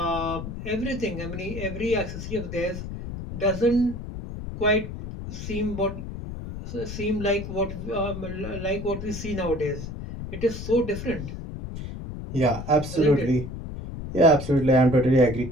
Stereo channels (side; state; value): left; noise; rumble, 8 dB below the sound